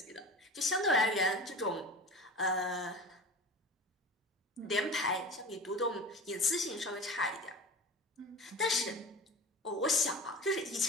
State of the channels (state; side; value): normal; both; correlation 0.35